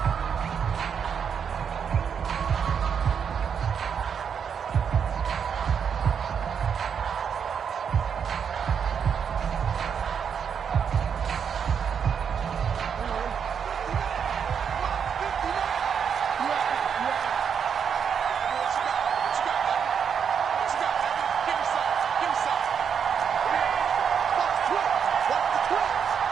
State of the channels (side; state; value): left; quieter; 7.2 dB